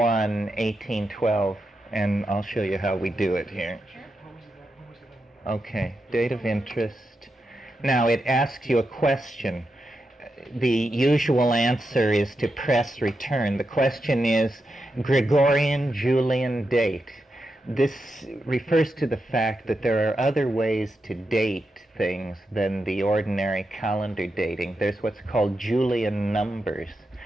1812, and I'll show you how we do it here. Okay, date of interest. Now it asks you a question. The usual answer is to press return. The question is Gregorian Julian date. This refers to the fact that there are other ways to date things than the ordinary calendar dating. There's what's called Julian numbers,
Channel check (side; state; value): both; normal; correlation 0.87